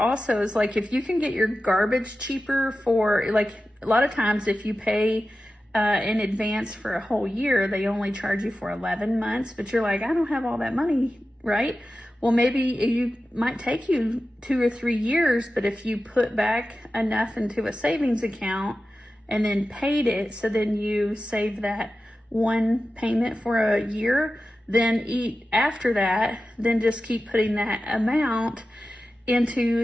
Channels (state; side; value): normal; both; correlation 0.93